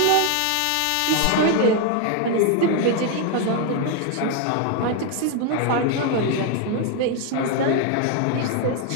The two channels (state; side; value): different; both; correlation 0.01